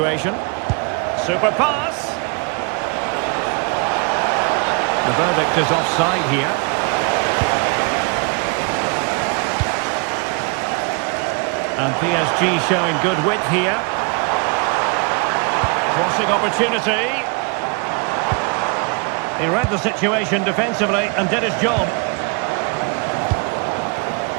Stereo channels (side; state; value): left; quieter; 33.9 dB